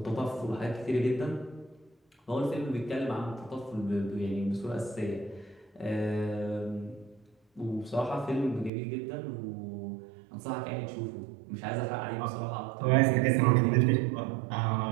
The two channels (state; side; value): drops out; left; at 8.7 s